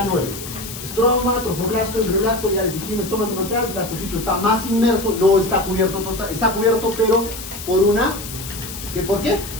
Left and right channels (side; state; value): left; noise; hiss, 11 dB below the sound